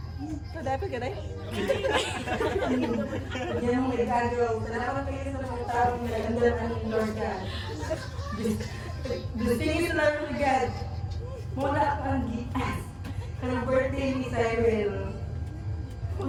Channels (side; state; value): both; identical; correlation 1.00